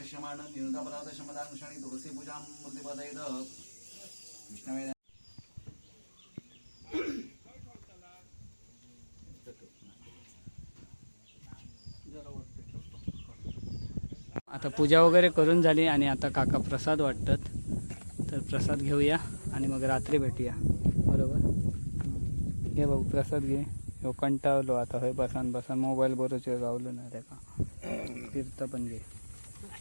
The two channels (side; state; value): both; inverted; correlation -1.00